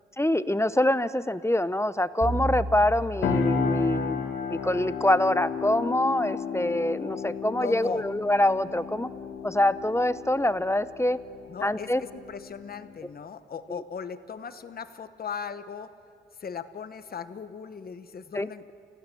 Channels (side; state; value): both; normal; correlation 0.80